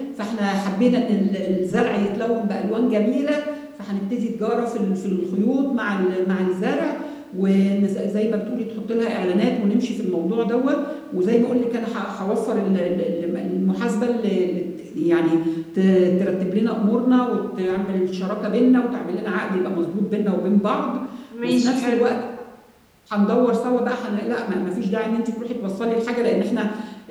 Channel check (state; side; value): identical; both; correlation 1.00